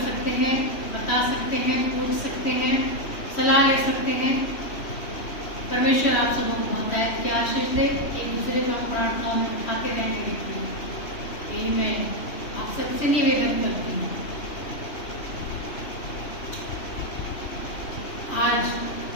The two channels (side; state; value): right; late; 3.1 ms